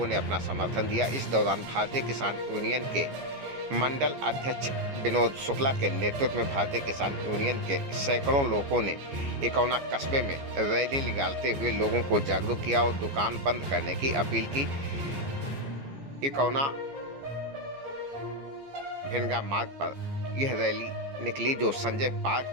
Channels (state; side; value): late; left; 14 ms